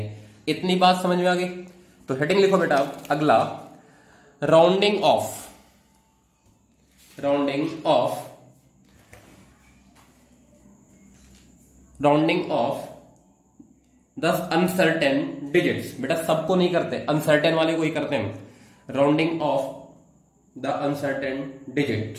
इतनी बात समझ में आ गई? तो हेडिंग लिखो बेटा अगला, rounding off, rounding off, rounding off the uncertain digits. बेटा सबको नहीं करते, अनसर्टेन वाले को ही करते हैं। Rounding off the uncertain digit,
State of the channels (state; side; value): identical; both; correlation 1.00